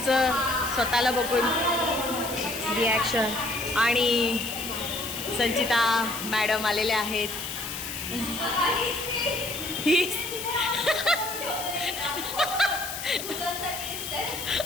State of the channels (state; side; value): noise; left; hiss, 7 dB below the sound